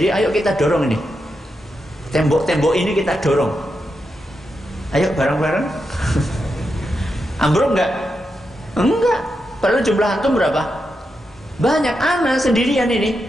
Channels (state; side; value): normal; both; correlation 0.86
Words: ayo kita dorong ini. Tembok-tembok ini kita dorong. Ayo bareng-bareng. Ambruk nggak? Enggak. Padahal jumlah antum berapa? Banyak. Ana sendirian